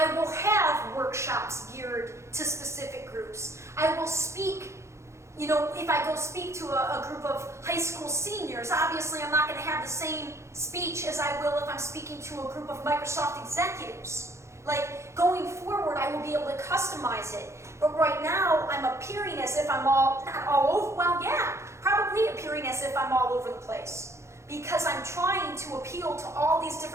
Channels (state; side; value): late; left; 0.14 ms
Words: will have workshops geared to specific groups. I will speak, you know, if I go speak to a group of high school seniors, obviously I'm not going to have the same speech as I will if I'm speaking to a group of Microsoft executives. Like, going forward, I will be able to customize it. But right now, I'm appearing as if I'm not all over, well, yeah, probably appearing as if I'm all over the place. Because I'm trying to appeal to all these